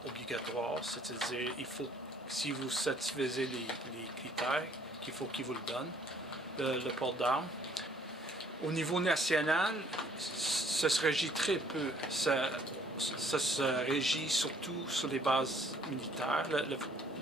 obligatoire, c'est-à-dire si vous satisfaisez les critères, qu'il faut qu'ils vous le donnent, le port d'armes. Au niveau national, ça se régit très peu. Ça se régit surtout sur les bases militaires.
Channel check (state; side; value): normal; both; correlation 0.61